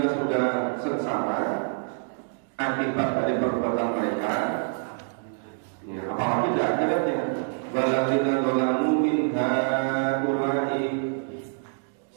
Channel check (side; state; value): left; silent; digital silence